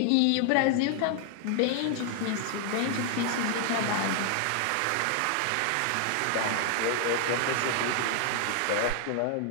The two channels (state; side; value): different; both; correlation 0.00